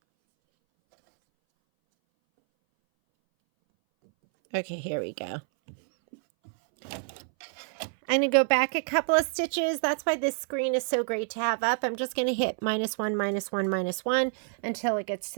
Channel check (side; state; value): left; silent; 59 dB below the other